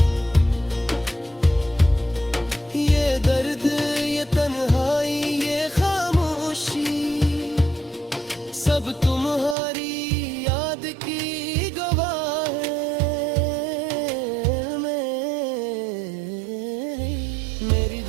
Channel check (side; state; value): left; drops out; at 9.6 s